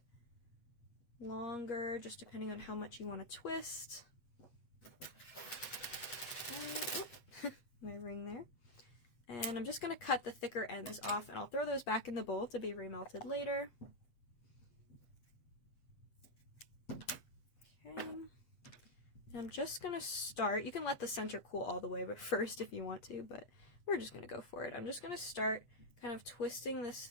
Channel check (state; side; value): late; right; 8.4 ms